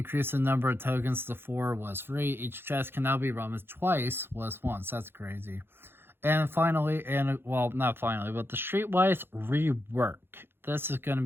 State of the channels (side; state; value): left; late; 0.11 ms